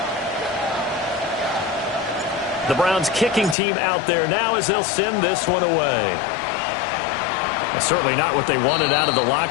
The Browns kicking team out there now as they'll send this one away. Well, certainly not what they wanted out of the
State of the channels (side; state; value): right; drops out; at 3.6 s